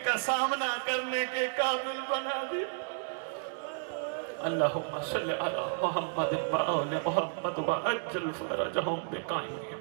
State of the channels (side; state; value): left; silent; digital silence